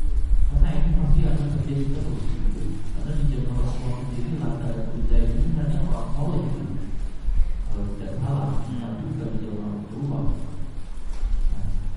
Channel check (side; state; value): both; identical; correlation 1.00